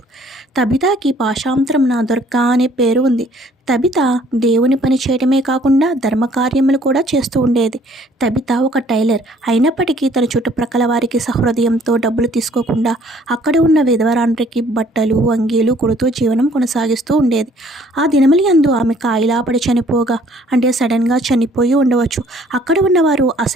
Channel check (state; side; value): normal; both; correlation 0.59